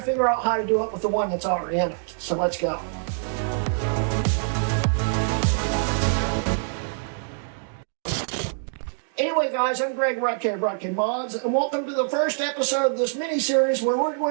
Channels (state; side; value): silent; left; digital silence